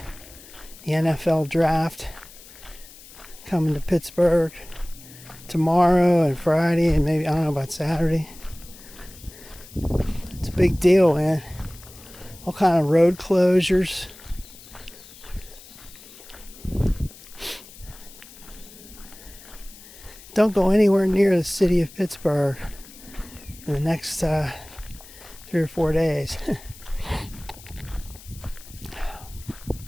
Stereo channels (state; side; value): noise; left; hiss, 19 dB below the sound